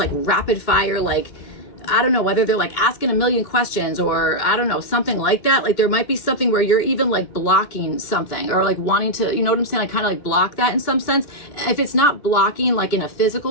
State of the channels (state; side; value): late; right; 2.9 ms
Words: rapid fire, like, I don't know, whether they're like asking a million questions, or I don't know, something like that. Like there might be something where you're even like blocking something, or like wanting to, you know what I'm saying? Like kind of like block that in some sense. If it's not blocking like in a